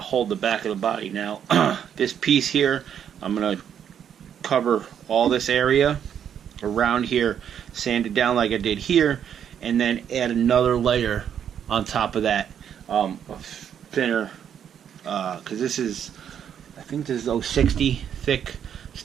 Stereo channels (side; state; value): left; quieter; 8.8 dB